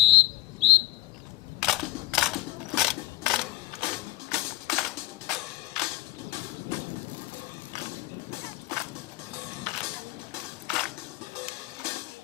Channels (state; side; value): quieter; right; 18.6 dB